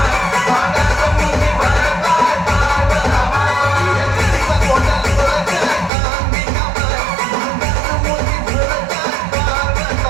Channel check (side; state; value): left; drops out; at 5.9 s